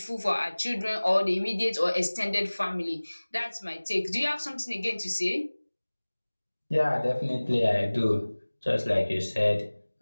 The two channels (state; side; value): inverted; both; correlation -1.00